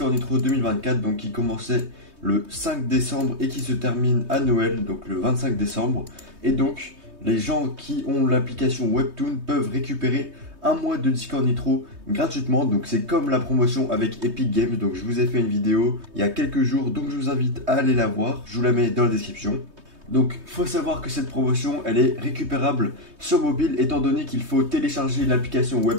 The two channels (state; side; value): late; left; 3.2 ms